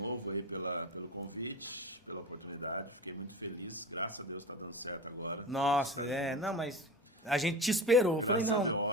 aí pelo convite, pela oportunidade. Fiquei muito feliz. Graças a Deus está dando certo agora. Nossa, não, mas a gente te esperou. Eu falei,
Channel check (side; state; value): both; normal; correlation 0.29